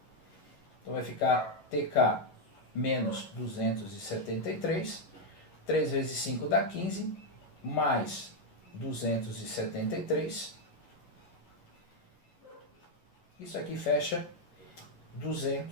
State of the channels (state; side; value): late; right; 11 ms